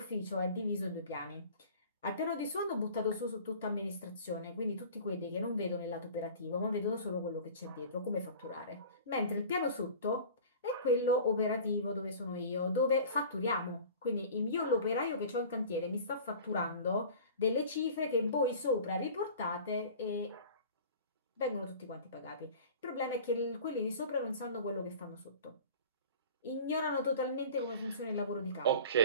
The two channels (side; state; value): both; inverted; correlation -0.41